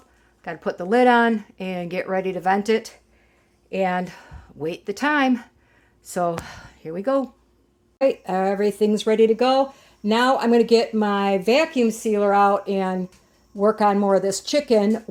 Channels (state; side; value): identical; both; correlation 1.00